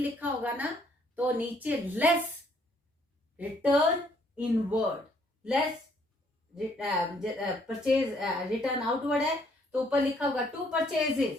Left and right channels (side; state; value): both; normal; correlation 0.66